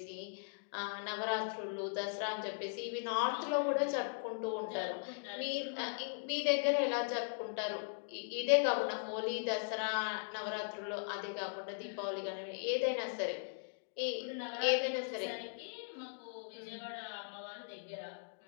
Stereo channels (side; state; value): right; silent; digital silence